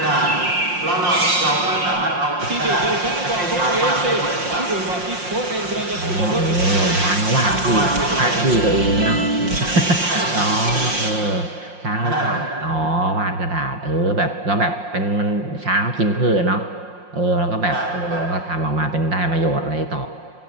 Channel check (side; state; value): left; late; 5.6 ms